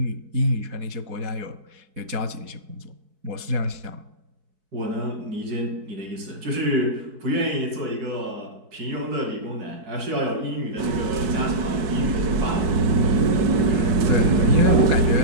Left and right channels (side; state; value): left; late; 4.7 ms